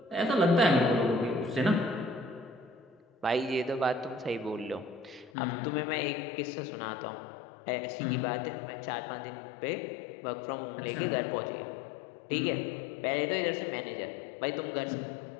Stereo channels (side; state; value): right; drops out; at 5.3 s